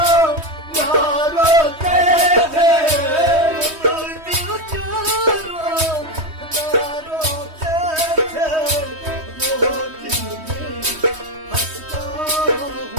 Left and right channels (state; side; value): late; left; 3.2 ms